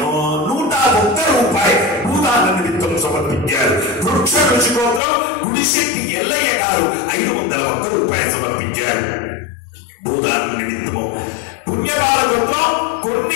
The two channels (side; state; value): right; drops out; at 5.0 s